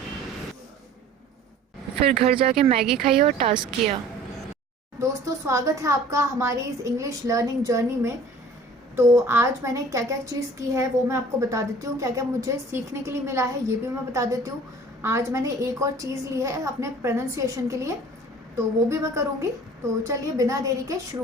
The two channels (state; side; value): normal; both; correlation 0.48